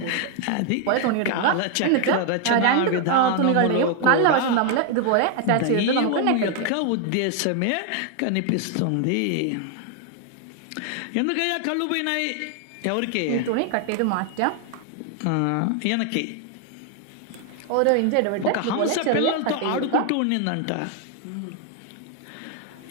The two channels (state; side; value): different; both; correlation 0.00